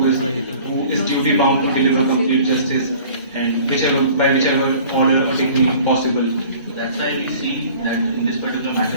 is duty bound to deliver complete justice and by whichever order or technique possible. That's why we see that in this particular matter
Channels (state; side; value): inverted; both; correlation -0.48